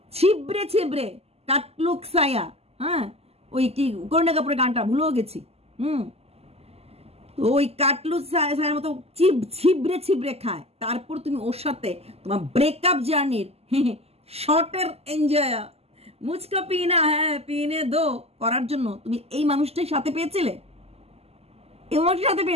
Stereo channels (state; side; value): late; left; 0.29 ms